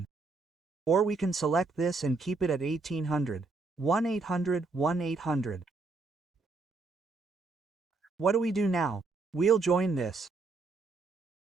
Or we can select this and keep it at 1800. 1800, 1800. What do we do now? We'll join this.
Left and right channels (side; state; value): left; quieter; 3.8 dB